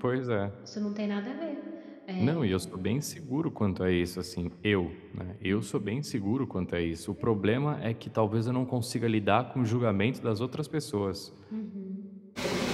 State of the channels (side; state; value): both; identical; correlation 1.00